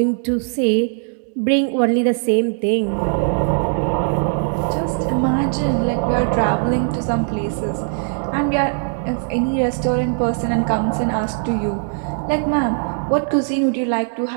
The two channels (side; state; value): left; silent; 66 dB below the other